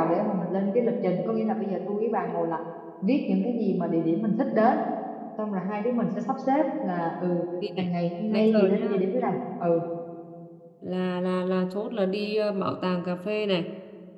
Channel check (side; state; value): both; identical; correlation 1.00